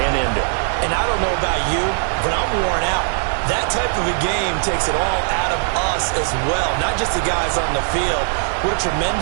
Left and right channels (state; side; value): silent; left; digital silence